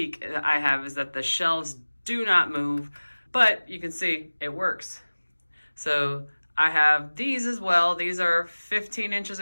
I have is that the shelves do not move, but you can see it works. So I have these as well. These are 15 inches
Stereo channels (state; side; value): inverted; both; correlation -1.00